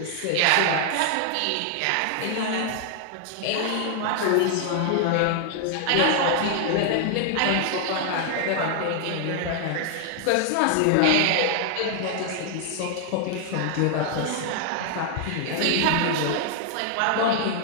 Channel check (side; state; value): both; different; correlation 0.00